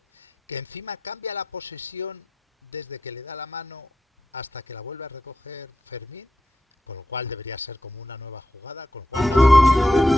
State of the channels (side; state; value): both; normal; correlation 0.87